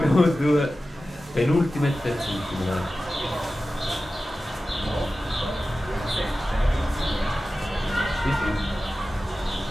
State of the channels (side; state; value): both; normal; correlation 0.95